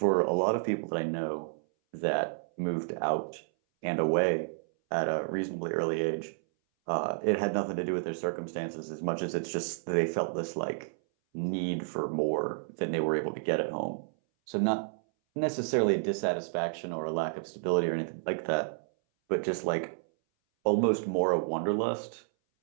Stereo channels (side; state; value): left; silent; 57 dB below the other